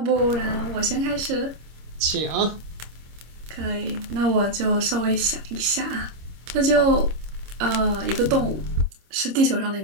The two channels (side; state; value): left; late; 26 ms